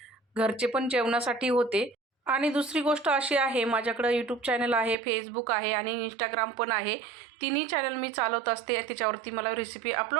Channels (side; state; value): left; drops out; at 5.0 s